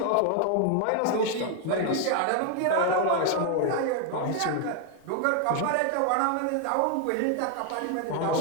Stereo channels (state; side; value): different; both; correlation 0.00